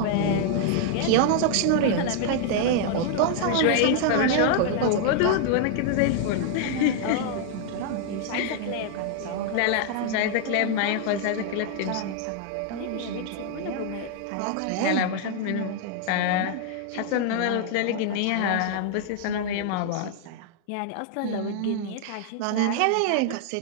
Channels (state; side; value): different; both; correlation 0.00